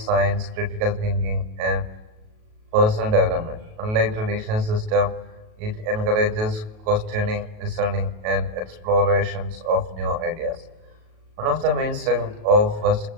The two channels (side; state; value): left; late; 37 ms